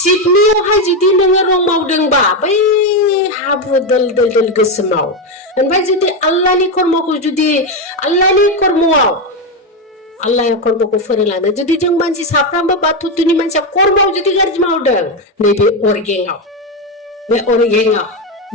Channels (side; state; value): both; normal; correlation 0.09